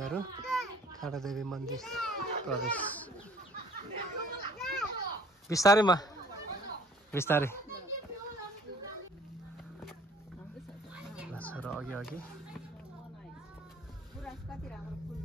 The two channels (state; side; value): normal; both; correlation 0.55